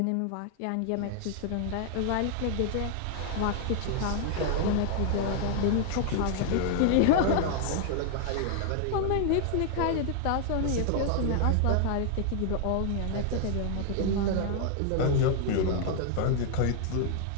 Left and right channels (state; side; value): different; both; correlation 0.00